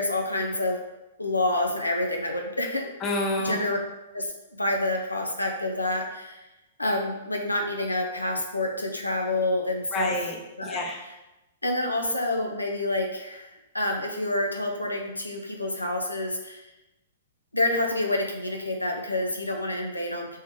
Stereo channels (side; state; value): both; inverted; correlation -0.59